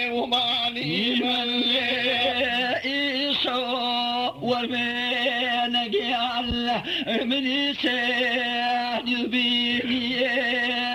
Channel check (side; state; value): both; identical; correlation 1.00